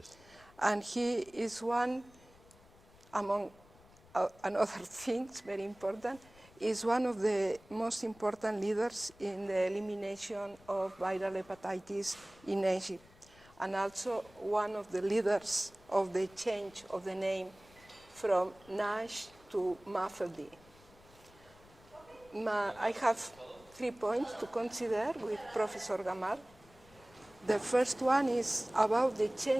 And he is one, among other things, very important, is one of the most important leaders in the elimination of viral hepatitis in Egypt, and also one of the leaders of the change of the name from NASH to MAFLD. I have 3 points to consider with Professor Gamal. The first one is about the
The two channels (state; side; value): noise; left; rumble, 26 dB below the sound